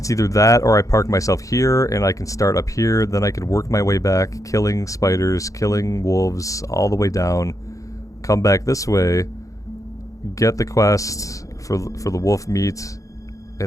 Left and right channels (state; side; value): late; right; 0.16 ms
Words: either that or I park myself here and I can start up here, then I can work my way back, killing spiders, killing wolves, all the way down, come back this way, get the quest for the wolf meat,